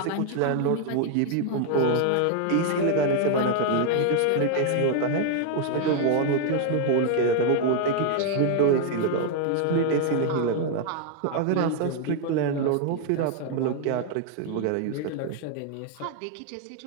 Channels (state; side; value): different; both; correlation 0.00